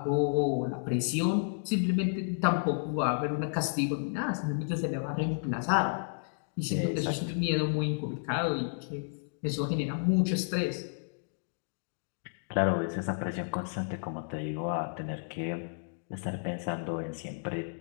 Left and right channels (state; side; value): silent; right; digital silence